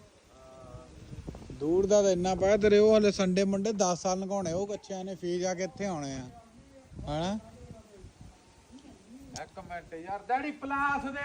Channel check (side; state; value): both; identical; correlation 1.00